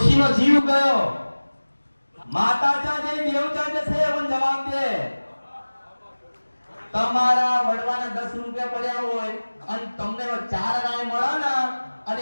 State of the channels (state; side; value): inverted; both; correlation -1.00